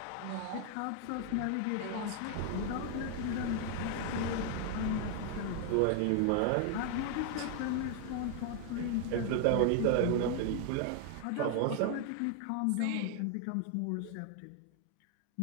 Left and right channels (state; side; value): different; both; correlation 0.00